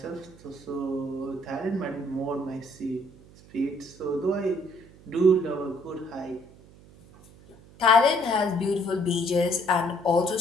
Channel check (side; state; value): right; noise; hum, 23 dB below the sound